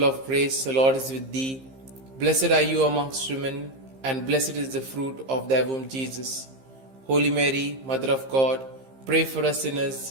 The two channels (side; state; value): left; late; 15 ms